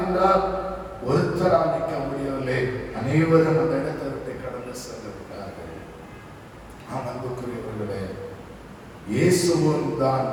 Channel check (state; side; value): identical; both; correlation 1.00